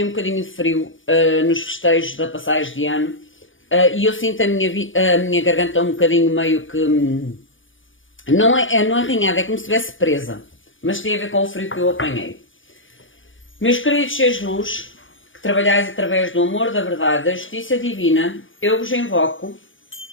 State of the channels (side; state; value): right; late; 0.57 ms